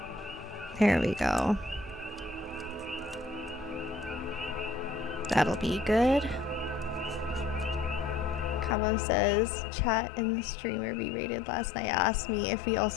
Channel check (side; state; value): right; drops out; at 8.8 s